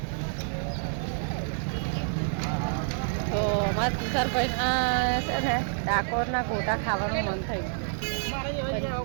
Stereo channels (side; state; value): left; silent; digital silence